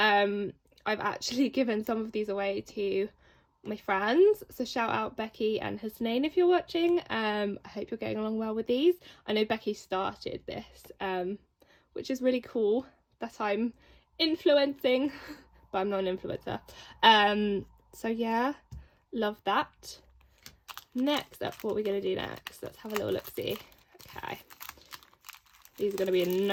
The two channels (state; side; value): identical; both; correlation 1.00